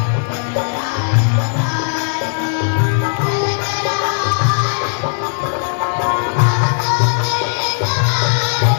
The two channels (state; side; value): silent; right; digital silence